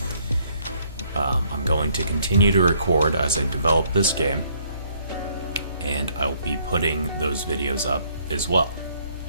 I'm going to continue to record as I develop this game, and I'll be putting those videos up as well.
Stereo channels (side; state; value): both; inverted; correlation -0.66